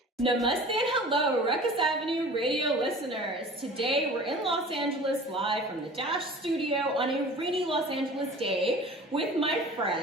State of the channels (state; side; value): normal; both; correlation 0.42